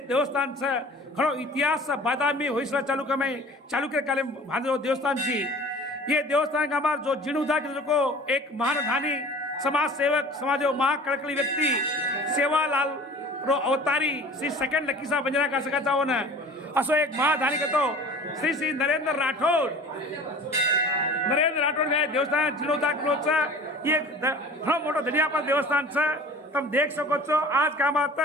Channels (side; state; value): both; normal; correlation 0.43